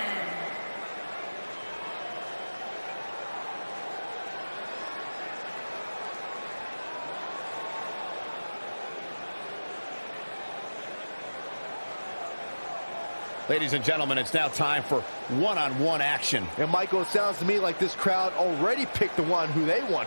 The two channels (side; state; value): both; inverted; correlation -1.00